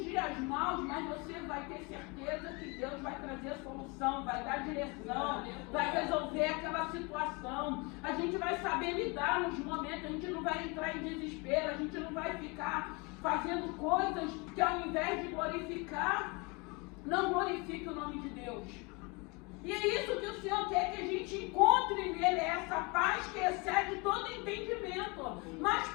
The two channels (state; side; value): quieter; right; 28.6 dB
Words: dias maus, mas você vai ter certeza que Deus vai trazer solução, vai dar direção, vai resolver aquela situação. A gente vai saber lidar nos momentos, a gente não vai entrar em desespero, a gente não vai ficar fazendo coisas que ao invés de glorificar, não glorifique o nome de Deus. E é isso que o Senhor quer que a gente encontre nele, essa paz que excede todo entendimento. Mas